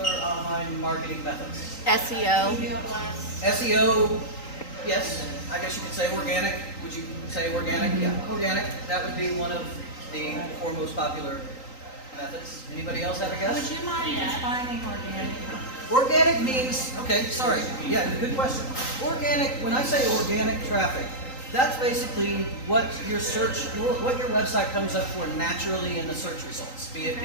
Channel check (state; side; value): late; right; 3.9 ms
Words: online marketing methods. SEO. SEO, yes. I guess you could say organic. Would you say organic? Yeah, organic. That would be one of the 4 most popular methods. Anybody else have a guess? Would you mind defining organic? Organic means, okay, sorry. Yeah, good question. Organic, when I say organic traffic, that's basically what your website comes up for naturally in the search results, be it